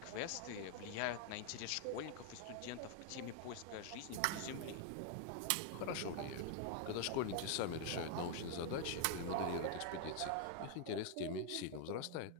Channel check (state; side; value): different; both; correlation 0.00